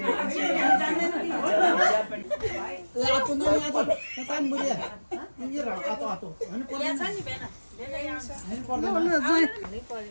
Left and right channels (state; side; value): inverted; both; correlation -1.00